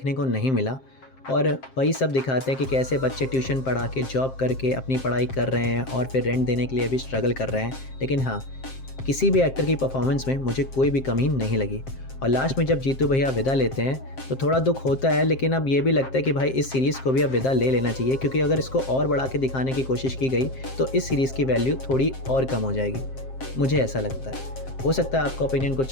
को नहीं मिला, और वही सब दिखाते हैं कि कैसे बच्चे ट्यूशन पढ़ा के जॉब करके अपनी पढ़ाई कर रहे हैं और फिर रेंट देने के लिए भी स्ट्रगल कर रहे हैं। लेकिन हाँ, किसी भी एक्टर की परफॉर्मेंस में मुझे कोई भी कमी नहीं लगी। और लास्ट में जब जीतू भैया विदा लेते हैं तो थोड़ा दुख होता है, लेकिन अब ये भी लगता है कि भाई इस सीरीज़ को भी अब विदा ले लेना चाहिए, क्योंकि अगर इसको और बढ़ा के दिखाने की कोशिश की गई तो इस सीरीज़ की वैल्यू थोड़ी और कम हो जाएगी, मुझे ऐसा लगता है। हो सकता है आपका ओपिनियन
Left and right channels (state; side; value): late; right; 7.6 ms